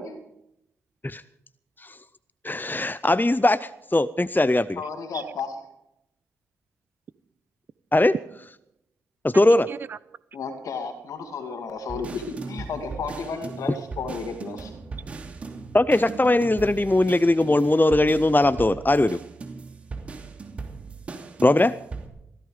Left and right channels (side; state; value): both; normal; correlation 0.90